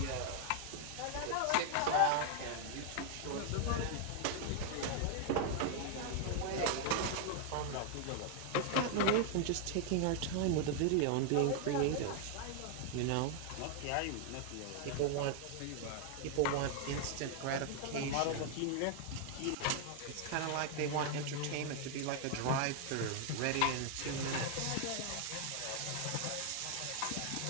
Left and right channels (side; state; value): both; different; correlation 0.00